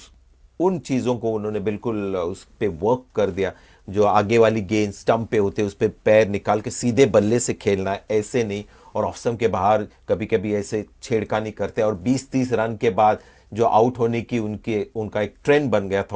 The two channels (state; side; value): identical; both; correlation 1.00